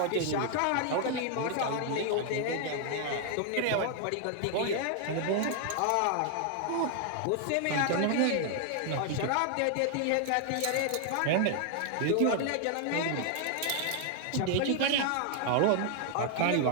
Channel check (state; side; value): different; both; correlation 0.00